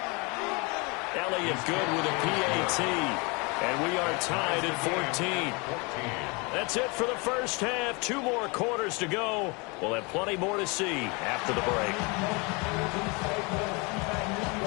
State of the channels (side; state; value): right; quieter; 29.1 dB